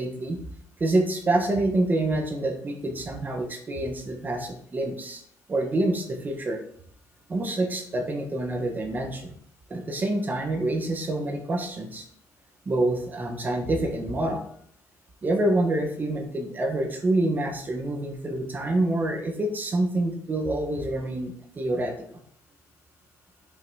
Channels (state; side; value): normal; both; correlation 0.80